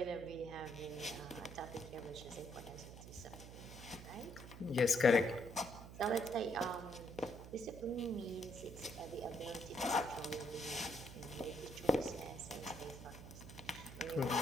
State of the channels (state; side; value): noise; right; hum, 13 dB below the sound